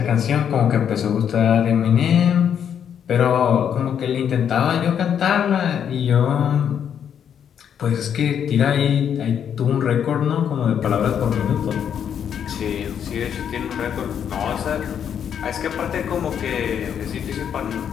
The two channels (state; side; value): quieter; right; 8.5 dB